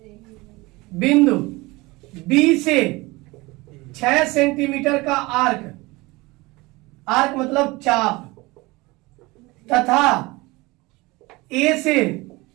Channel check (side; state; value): left; quieter; 22.6 dB